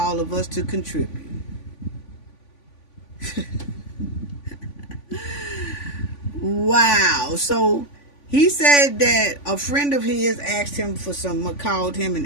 of us to contribute. Wow. So he said that a friend of his called him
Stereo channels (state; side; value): late; right; 3.5 ms